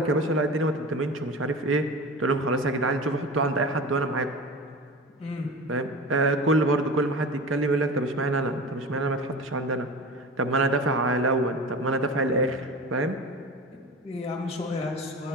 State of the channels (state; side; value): normal; both; correlation 0.32